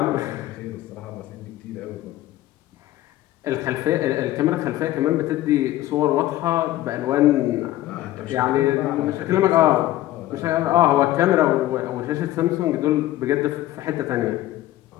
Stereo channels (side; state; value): right; quieter; 15.1 dB